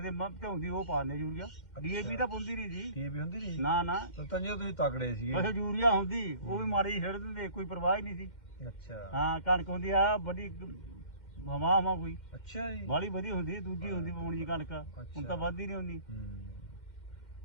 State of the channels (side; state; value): right; late; 2.1 ms